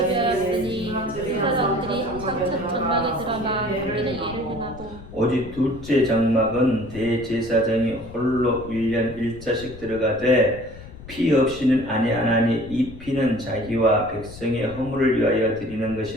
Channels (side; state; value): left; noise; rumble, 16 dB below the sound